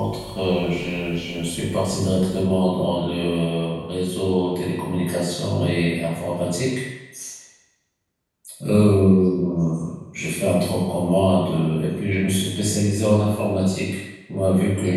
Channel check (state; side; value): identical; both; correlation 1.00